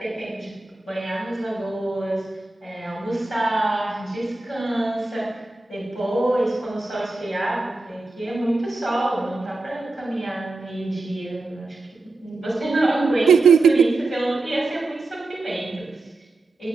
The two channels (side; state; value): left; quieter; 3.2 dB